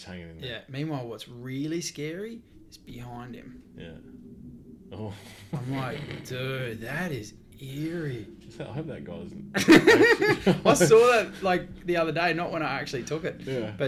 hanging in. Yeah. Meanwhile, what's really scary is behind him. Yeah. Oh, I'm like, dude, that is eerie. I hope that guy doesn't. I saw that like the other day, not when I actually took it. Yeah.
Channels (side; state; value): both; identical; correlation 1.00